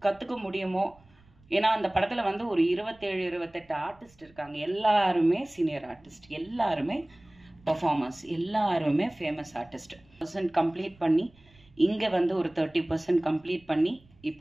கற்றுக்க முடியுமோ. ஏன்னா அந்த படத்தில் வந்து ஒரு 27-28 ஆர்டிஸ்ட் இருக்காங்க. எல்லாருமே சீனியர் ஆர்டிஸ்ட், எல்லாருமே பர்ஃபார்மர்ஸ், எல்லாருமே ஃபேமஸ் ஆர்டிஸ்ட். கம்ப்ளீட் பண்ணி இங்கே வந்து ஒரு 30% கம்ப்ளீட் பண்ணி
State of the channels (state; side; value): noise; right; rumble, 29 dB below the sound